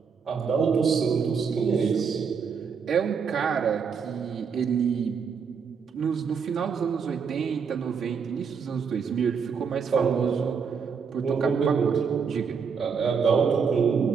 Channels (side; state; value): left; quieter; 6.1 dB